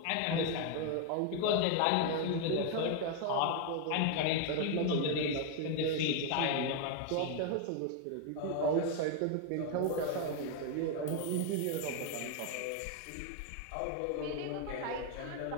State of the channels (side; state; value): both; different; correlation 0.01